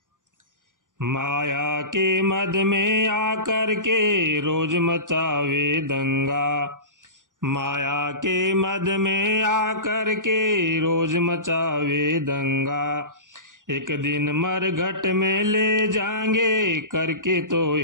माया के मद में आकर के रोज मचावे दंगा। माया के मद में आकर के रोज मचावे दंगा। एक दिन मरघट में ले जाएंगे, करके तो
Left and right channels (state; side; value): late; left; 0.88 ms